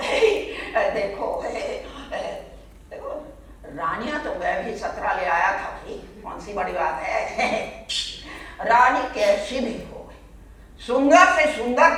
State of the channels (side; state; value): both; identical; correlation 1.00